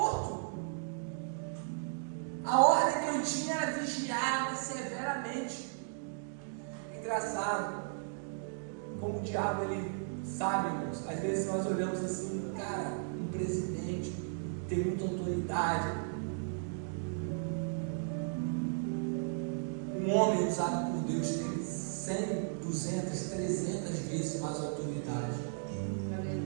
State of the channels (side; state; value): left; silent; digital silence